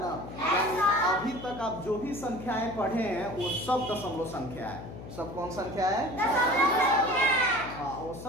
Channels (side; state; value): left; noise; hum, 12 dB below the sound